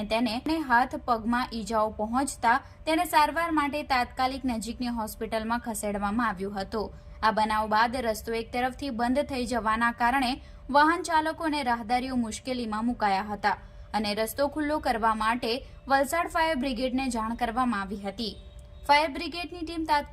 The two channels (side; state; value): both; identical; correlation 1.00